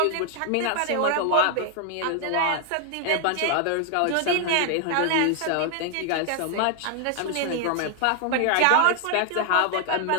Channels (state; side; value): different; both; correlation 0.00